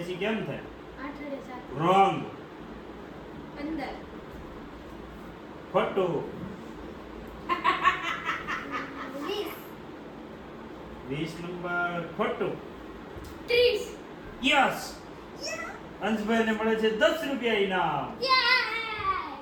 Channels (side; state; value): both; identical; correlation 1.00